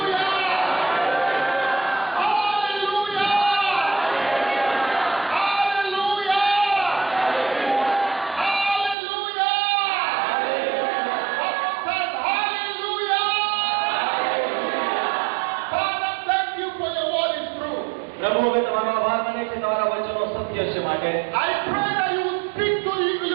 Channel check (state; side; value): drops out; left; at 9.0 s